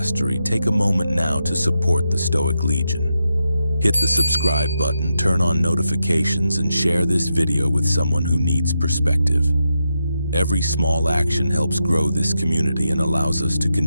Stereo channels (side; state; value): both; inverted; correlation -0.86